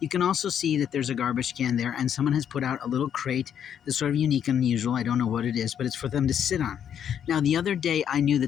can also see that there's a garbage can there, and someone has put out a little crate that's sort of unique and unusual. I don't know what it is, but it's for them to sit on. Now, the other day, I knew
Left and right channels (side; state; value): right; quieter; 8.9 dB